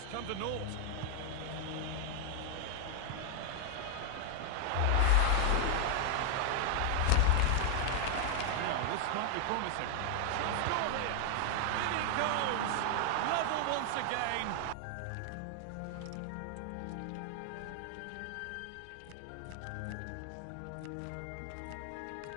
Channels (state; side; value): different; both; correlation 0.00